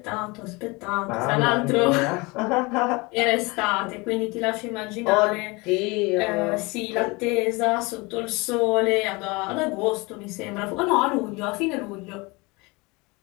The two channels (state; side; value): quieter; right; 25.6 dB